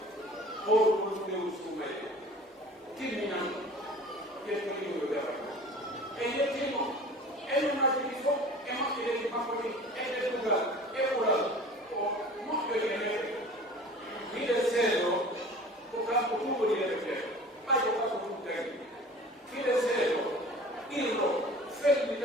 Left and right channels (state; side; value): normal; both; correlation 0.43